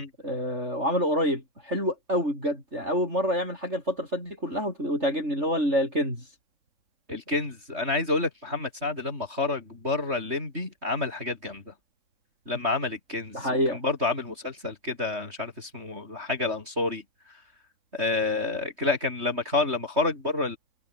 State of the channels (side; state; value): left; late; 3.2 ms